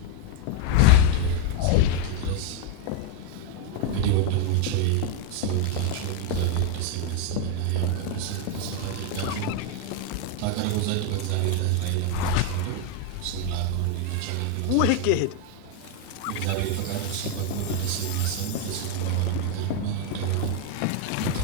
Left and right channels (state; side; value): different; both; correlation 0.01